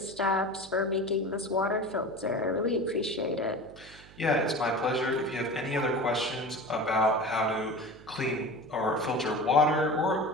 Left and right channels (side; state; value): right; noise; hum, 21 dB below the sound